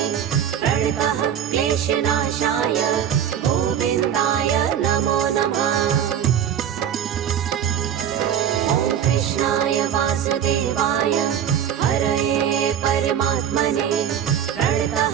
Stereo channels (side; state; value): left; quieter; 9.3 dB